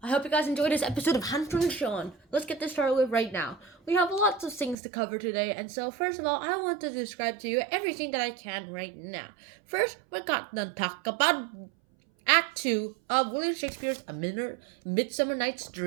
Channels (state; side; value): drops out; left; at 4.8 s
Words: hope you guys enjoyed this episode of Hunter and Sean. Let's get this started with right now. We have lots of things to cover today, and so first of all, I want to describe to you everything that I can right now. First, we're going to talk about Act 2 of William Shakespeare's A Midsummer Night's